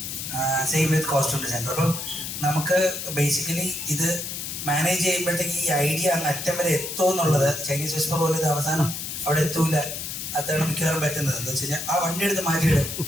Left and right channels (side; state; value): left; noise; hiss, 6 dB below the sound